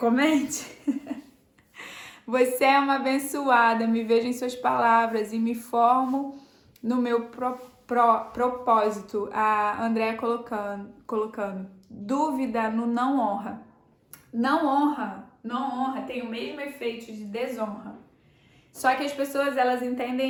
Você é uma abençoada, me vejo em suas palavras e me formo no meu propósito. A Andréa colocando dúvida no não honra. Não honra tem o mesmo efeito de desonra. Só que as pessoas, elas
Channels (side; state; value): both; identical; correlation 1.00